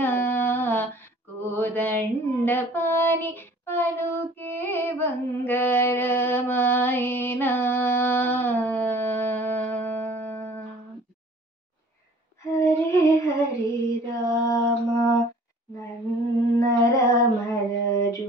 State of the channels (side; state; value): both; normal; correlation 0.50